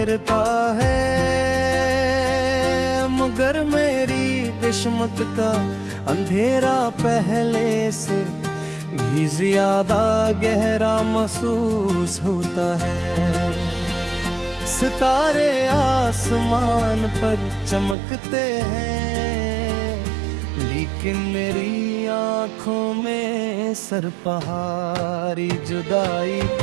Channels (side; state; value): left; drops out; at 17.9 s